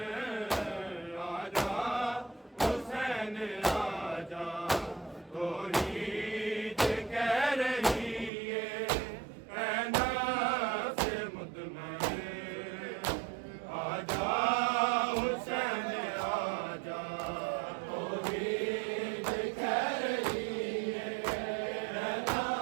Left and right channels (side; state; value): left; drops out; at 8.3 s